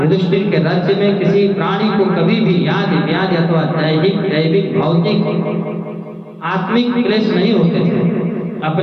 युधिष्ठिर के राज्य में किसी प्राणी को कभी भी याद व्याधि अथवा दैविक भौतिक आत्मिक क्लेश नहीं होते थे।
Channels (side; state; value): both; identical; correlation 1.00